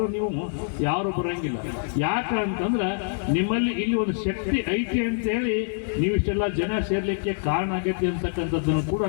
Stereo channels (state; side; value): silent; right; 57 dB below the other